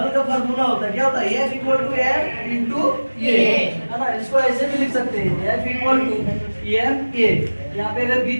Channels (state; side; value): inverted; both; correlation -1.00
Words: का फार्मूला होता है, क्या होता है? F equal to M into A, है ना, इसको ऐसे भी लिख सकते हैं, F equal to M A. यहाँ पे अगर